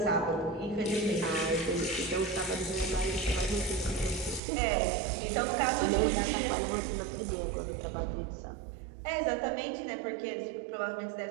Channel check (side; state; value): left; drops out; at 4.4 s